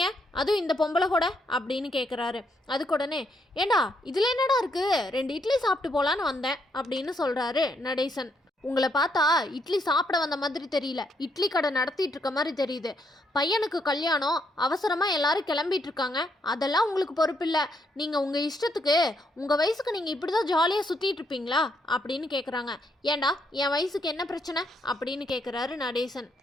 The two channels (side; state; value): both; normal; correlation 0.75